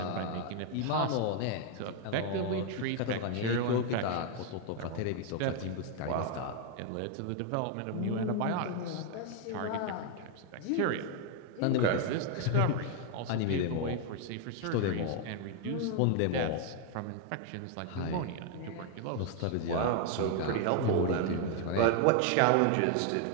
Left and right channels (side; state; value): both; different; correlation 0.00